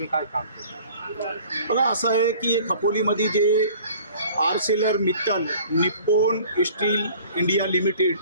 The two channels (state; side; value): inverted; both; correlation -0.49